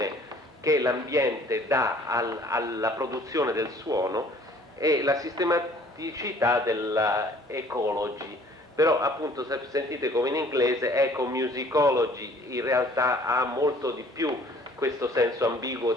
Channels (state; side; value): normal; both; correlation 0.55